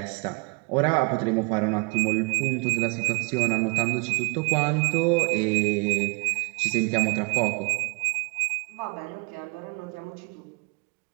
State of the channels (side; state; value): left; quieter; 31.1 dB